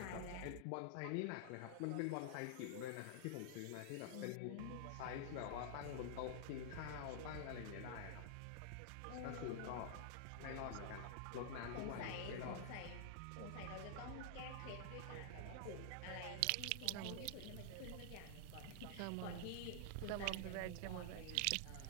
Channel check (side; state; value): both; different; correlation -0.01